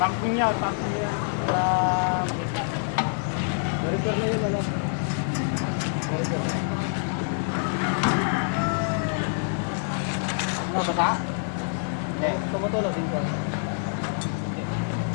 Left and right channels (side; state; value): right; silent; digital silence